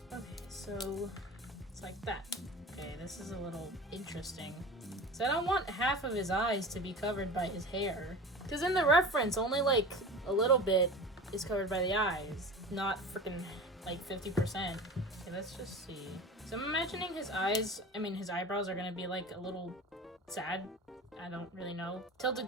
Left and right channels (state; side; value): normal; both; correlation 0.34